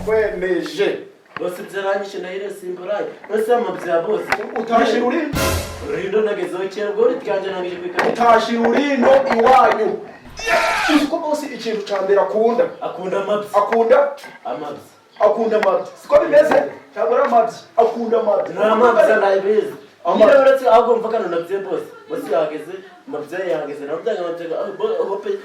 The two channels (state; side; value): identical; both; correlation 1.00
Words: bose byaranyishe nahire simburaye bose amabza bose utashira urindo urindo nagezeho cyangwa uri twanje nangije kwikana utashira urindo iwanyu uko bose ikintu cyambere akunda amabza siko bimeze cyangwa amabza akunda amabza nta mabza ndayibizi amabza uretse ahubwo mvakana na bye bose yageze amabza yageze nabyo amabza hope